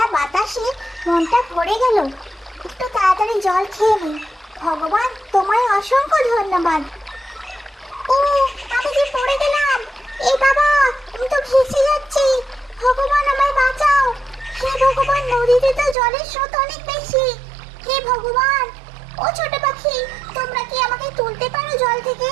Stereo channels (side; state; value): left; drops out; at 16.0 s